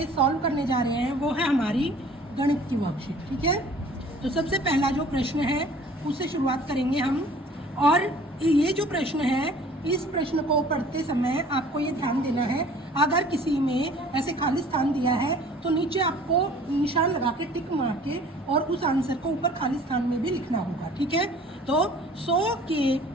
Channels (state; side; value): normal; both; correlation 0.50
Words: सॉल्व करने जा रहे हैं वो है हमारी गणित की वर्कशीट। ठीक है, तो सबसे पहला जो प्रश्न है उससे शुरुआत करेंगे हम। और ये जो प्रश्न है, इस प्रश्न को पढ़ते समय आपको ये ध्यान देना है, अगर किसी में ऐसे खाली स्थान दिया है तो नीचे आपको निशान लगा के टिक मार के और उस आंसर को ऊपर खाली स्थान में भी लिखना होगा। ठीक है, तो 100 के